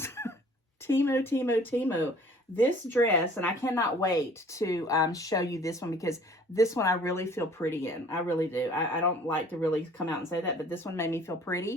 Temu. This dress, and I cannot wait to show you this one, because this one I really feel pretty in. I really do. I don't like to really come out and say that, but this one made me feel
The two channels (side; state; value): both; normal; correlation 0.52